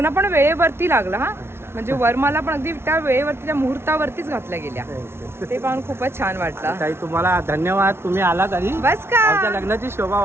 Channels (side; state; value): left; late; 0.12 ms